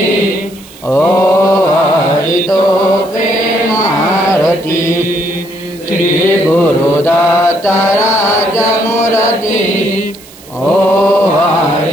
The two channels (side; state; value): right; noise; hiss, 22 dB below the sound